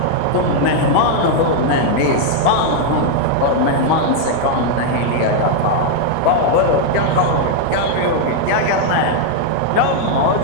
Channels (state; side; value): different; both; correlation 0.00